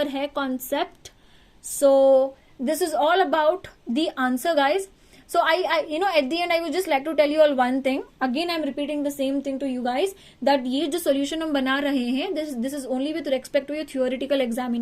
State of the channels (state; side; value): identical; both; correlation 1.00